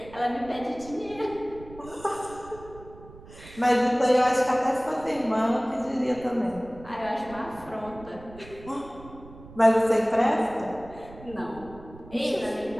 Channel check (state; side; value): noise; right; rumble, 18 dB below the sound